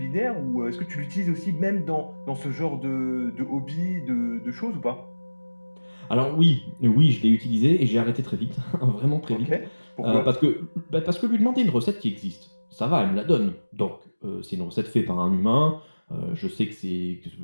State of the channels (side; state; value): both; inverted; correlation -1.00